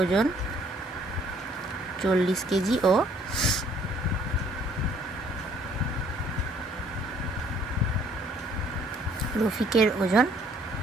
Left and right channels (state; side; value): normal; both; correlation 0.60